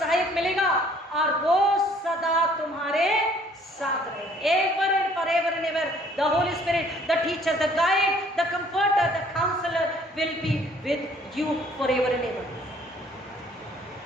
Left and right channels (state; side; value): normal; both; correlation 0.58